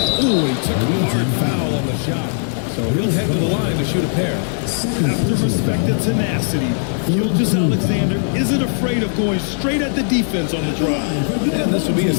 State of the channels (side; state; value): right; silent; digital silence